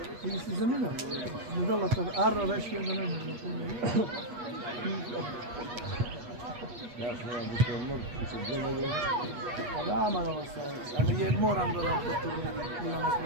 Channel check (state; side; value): late; left; 8.3 ms